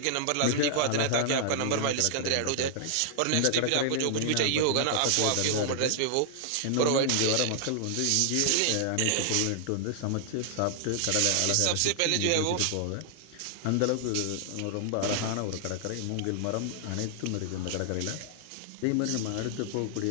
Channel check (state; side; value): different; both; correlation -0.01